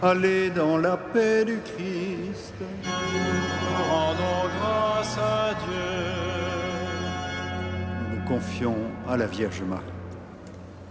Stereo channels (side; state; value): both; identical; correlation 1.00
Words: Allez dans la paix du Christ. Rendons grâce à Dieu. Nous nous confions à la Vierge Marie.